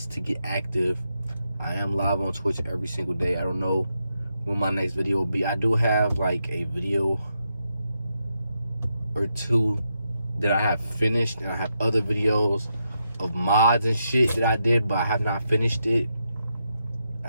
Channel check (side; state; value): both; inverted; correlation -0.84